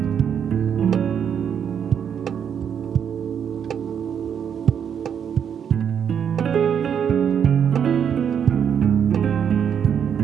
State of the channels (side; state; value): left; quieter; 8.1 dB